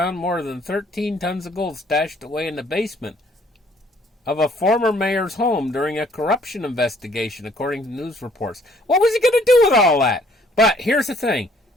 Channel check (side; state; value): both; normal; correlation 0.61